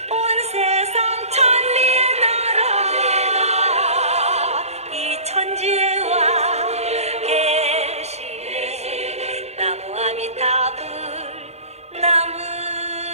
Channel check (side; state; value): left; late; 0.31 ms